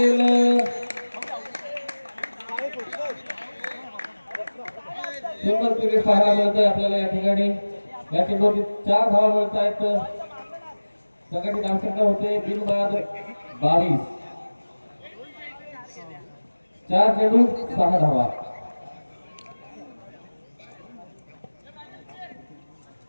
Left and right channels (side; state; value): both; inverted; correlation -1.00